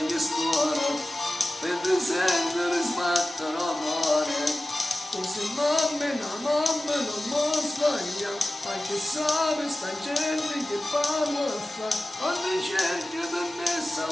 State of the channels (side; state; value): both; normal; correlation 0.95